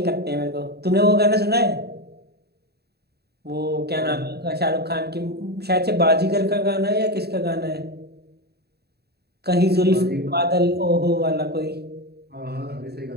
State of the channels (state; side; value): late; left; 0.47 ms